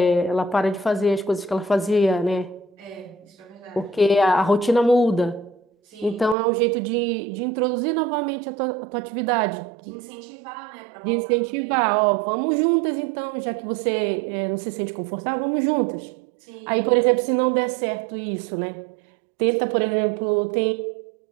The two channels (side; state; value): left; drops out; at 6.4 s